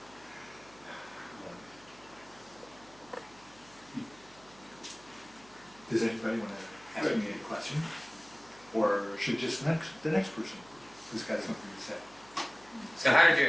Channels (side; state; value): right; noise; hum, 25 dB below the sound